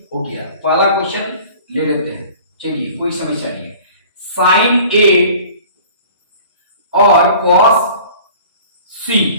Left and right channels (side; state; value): both; inverted; correlation -0.47